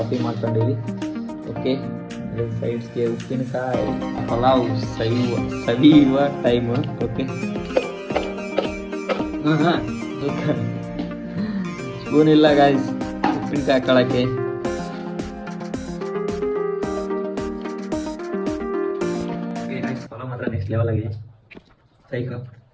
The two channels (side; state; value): both; identical; correlation 1.00